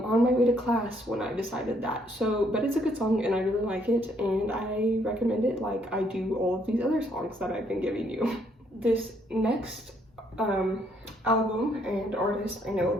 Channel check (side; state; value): both; normal; correlation 0.69